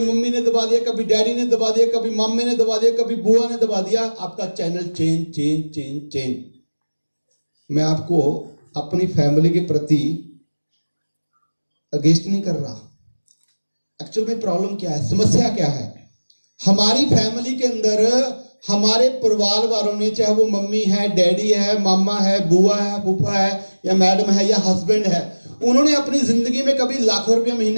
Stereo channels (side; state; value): both; inverted; correlation -1.00